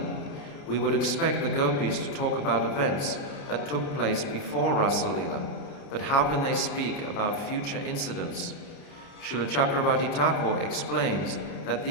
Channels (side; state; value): right; late; 29 ms